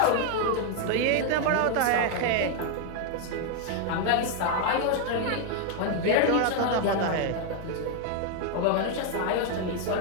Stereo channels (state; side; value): different; both; correlation 0.00